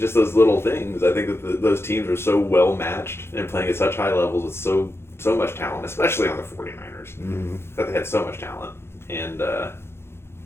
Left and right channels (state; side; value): late; right; 0.12 ms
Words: those little things. I think that those teams are so well matched and playing at such high levels with so much talent, especially on the 49ers, that they had so much talent. And,